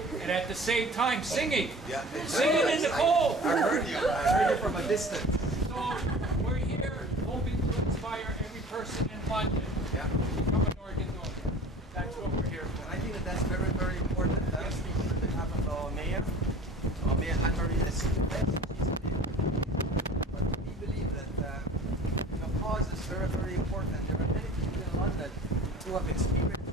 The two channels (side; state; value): both; normal; correlation 0.44